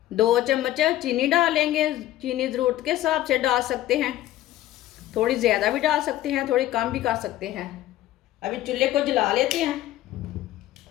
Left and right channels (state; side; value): quieter; right; 14.4 dB